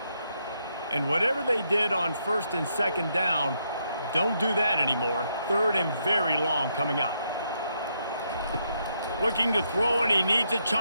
And whatever they did on first and second down, don't do that anymore. Third and very long coming up. Looking to throw, and he needs a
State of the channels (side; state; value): both; inverted; correlation -0.77